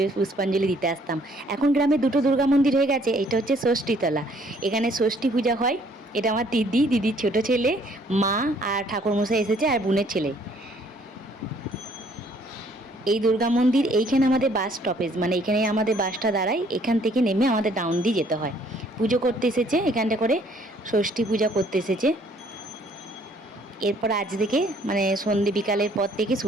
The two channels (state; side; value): normal; both; correlation 0.62